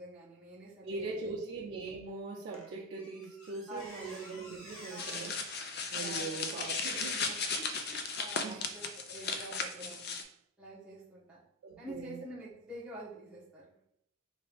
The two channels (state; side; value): normal; both; correlation 0.10